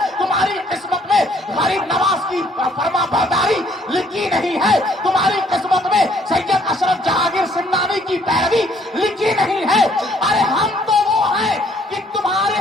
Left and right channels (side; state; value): both; normal; correlation 0.64